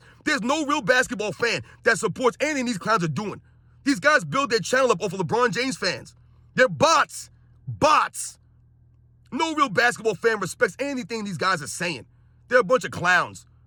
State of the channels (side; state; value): both; identical; correlation 1.00